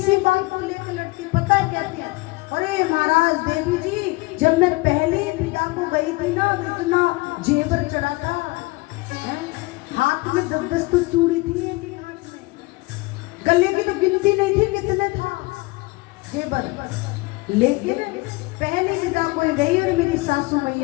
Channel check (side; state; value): right; quieter; 23.4 dB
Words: बात को लेकर लड़ती, पता है कहती है, अरे महाराज देवी जी जब मैं पहले पिता को गई थी ना तो इतना जेवर चढ़ा था, हाथ में 10-10 तो चूड़ी थी, एक हाथ में गले की तो गिनती नहीं थी कितने था जेवर, लेकिन पहले पिता को गई और मेरी सासू